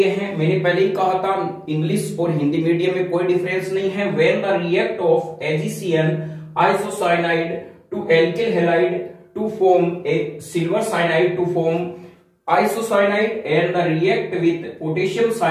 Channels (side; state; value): both; identical; correlation 1.00